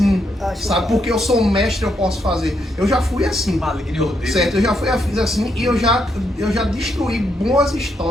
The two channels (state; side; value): normal; both; correlation 0.78